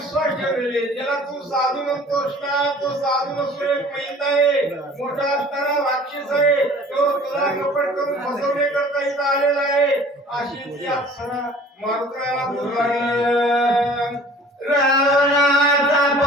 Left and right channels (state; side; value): normal; both; correlation 0.48